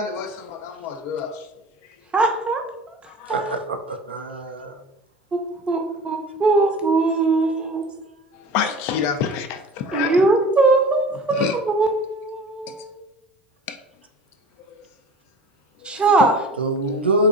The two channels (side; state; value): both; normal; correlation 0.39